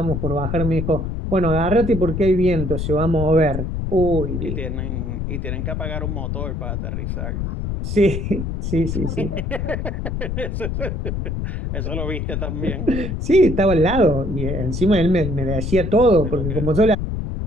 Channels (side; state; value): left; noise; rumble, 3 dB below the sound